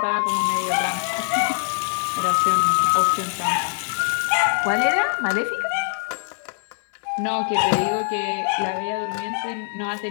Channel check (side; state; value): right; silent; 63 dB below the other